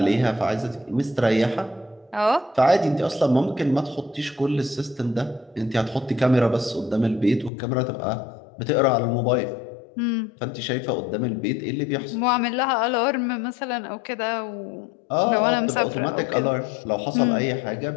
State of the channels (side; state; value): right; drops out; at 7.5 s